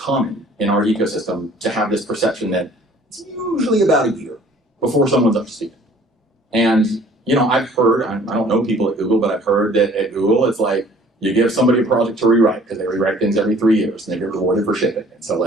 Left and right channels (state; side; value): normal; both; correlation 0.54